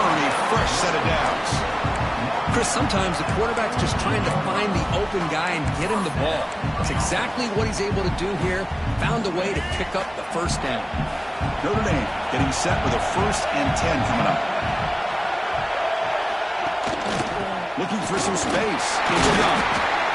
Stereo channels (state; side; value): identical; both; correlation 1.00